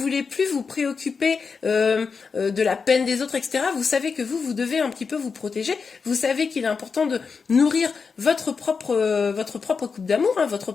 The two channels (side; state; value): right; quieter; 5.3 dB